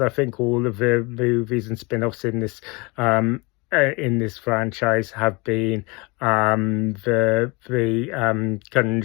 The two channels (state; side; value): quieter; right; 27.3 dB